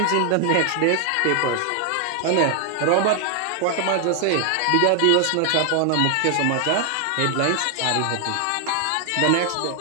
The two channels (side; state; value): both; different; correlation 0.00